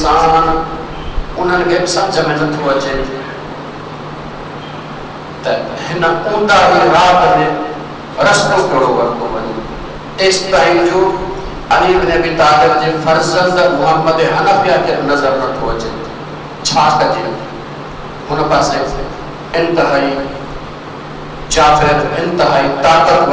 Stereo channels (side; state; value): both; identical; correlation 1.00